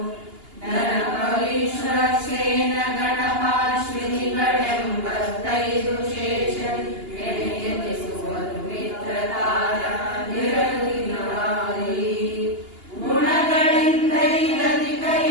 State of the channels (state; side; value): late; left; 2.8 ms